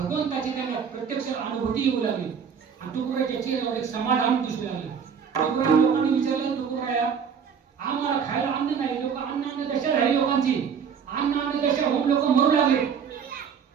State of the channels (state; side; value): quieter; left; 6.9 dB